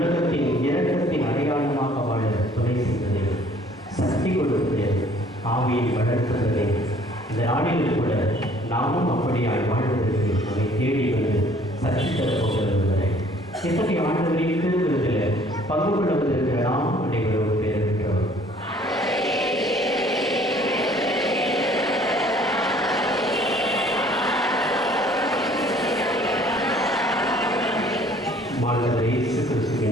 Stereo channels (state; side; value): normal; both; correlation 0.57